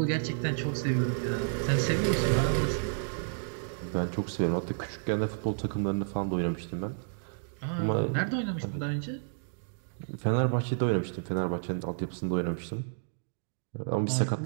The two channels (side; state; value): left; silent; digital silence